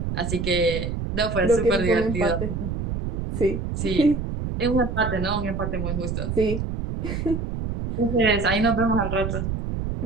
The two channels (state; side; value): noise; right; rumble, 3 dB below the sound